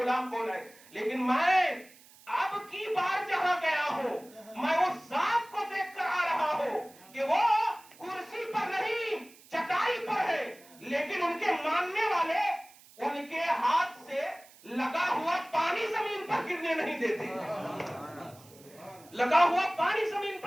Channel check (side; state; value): right; noise; hiss, 24 dB below the sound